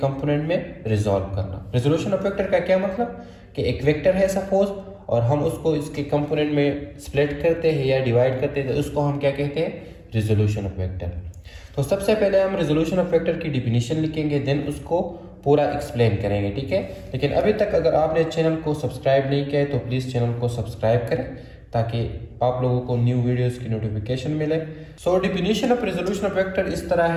में रिजॉल्व करना। रिजोल्यूशन ऑफ वेक्टर का क्या मतलब कि एक वेक्टर है सपोज, और हम उसको इसके कंपोनेंट में स्प्लिट करते हैं या डिवाइड करते हैं, तो उसको हम क्या कहते हैं? Resolution of vector. तो सबसे पहले हम रिजोल्यूशन ऑफ वेक्टर की डिफिनीशन लिखेंगे, देन उसको पूरा एक्सप्लेन करेंगे, ठीक है। लेकिन अभी तक अगर आपने चैनल को सब्सक्राइब नहीं किया है तो प्लीज़ चैनल को सब्सक्राइब करें ताकि आप लोगों को न्यू वीडियोस की नोटिफिकेशन मिले। So definition of resolution of vector इस तरह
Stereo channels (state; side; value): identical; both; correlation 1.00